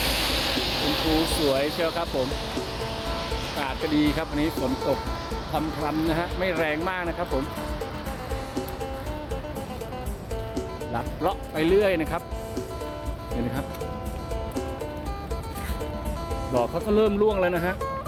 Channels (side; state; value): both; identical; correlation 1.00